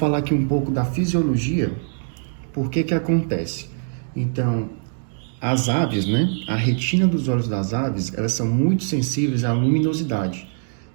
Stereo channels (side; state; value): left; silent; digital silence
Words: aqui um pouco da fisiologia, por que acontece. Então, as aves, né? A retina dos olhos das aves, elas são muito sensíveis à luminosidade.